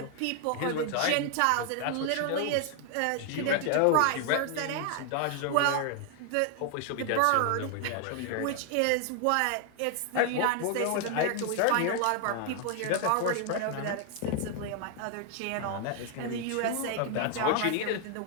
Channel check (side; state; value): both; different; correlation 0.00